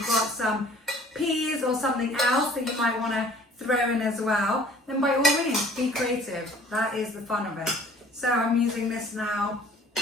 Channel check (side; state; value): both; normal; correlation 0.52